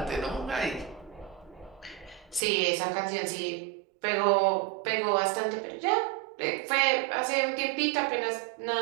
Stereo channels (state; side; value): drops out; left; at 2.4 s